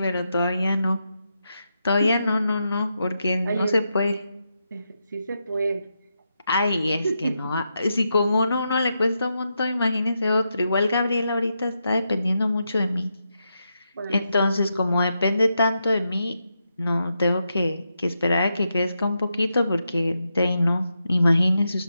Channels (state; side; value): inverted; both; correlation -0.85